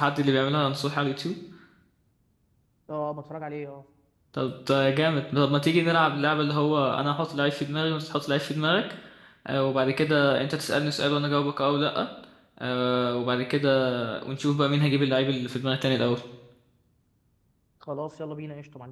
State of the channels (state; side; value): identical; both; correlation 1.00